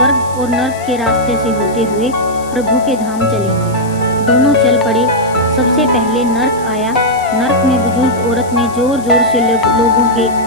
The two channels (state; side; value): noise; left; hiss, 20 dB below the sound